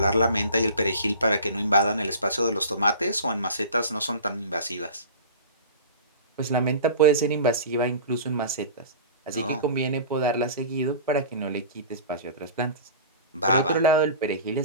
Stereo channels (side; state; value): both; inverted; correlation -0.38